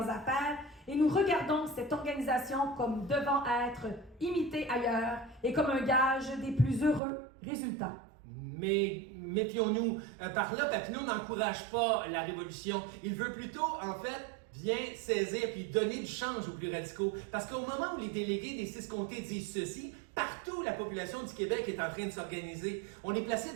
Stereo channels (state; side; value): drops out; left; at 7.0 s